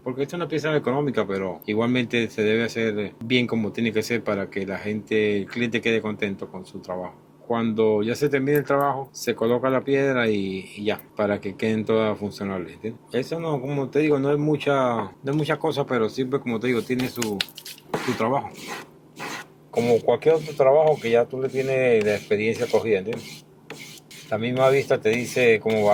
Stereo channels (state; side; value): identical; both; correlation 1.00